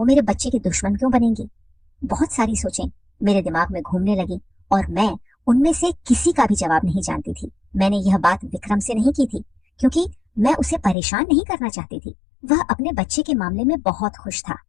मेरे बच्चे की दुश्मन क्यों बनेंगी? बहुत सारी सोचें मेरे दिमाग में घूमने लगी और मैं उनमें से किसी का भी जवाब नहीं जानती थी। मैंने यह बात विक्रम से नहीं की थी, क्योंकि मैं उसे परेशान नहीं करना चाहती थी। वह अपने बच्चे के मामले में बहुत खुश था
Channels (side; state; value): right; drops out; at 11.0 s